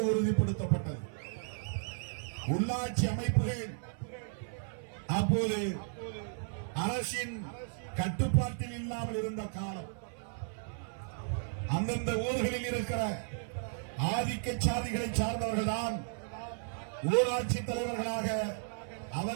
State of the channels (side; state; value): left; silent; 55 dB below the other